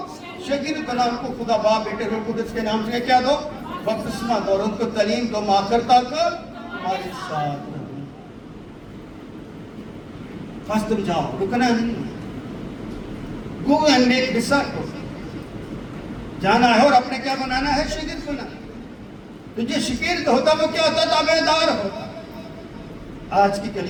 شاگرد بنا، ان کو خدا باپ بیٹے روح القدس کے نام سے کیا دو، بپتسمہ دو، اور ان کو تعلیم دو، آخر تک ہمارے ساتھ رہو۔ بس تم جاؤ، رکنا نہیں، گو اینڈ میک ڈسائپلز، جانا ہے اور اپنے کیا بنانا ہے، شاگرد بنانا۔ تو جو شاگرد ہوتا وہ کیا ہوتا، تابع دار ہوتا۔ آج کی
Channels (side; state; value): both; identical; correlation 1.00